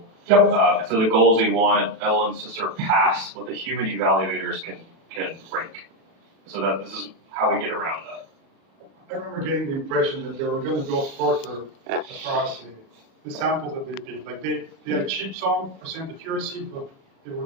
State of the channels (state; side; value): late; left; 36 ms